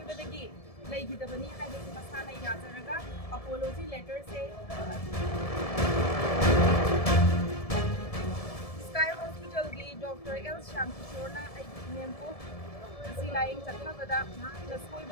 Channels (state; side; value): late; right; 1.7 ms